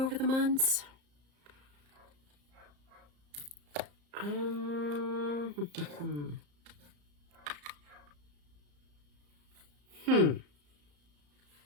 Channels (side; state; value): left; late; 34 ms